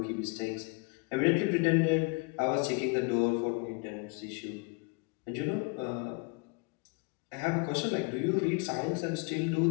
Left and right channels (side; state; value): right; quieter; 30.5 dB